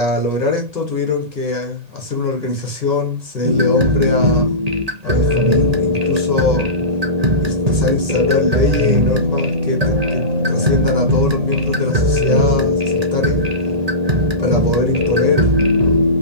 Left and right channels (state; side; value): late; left; 1.8 ms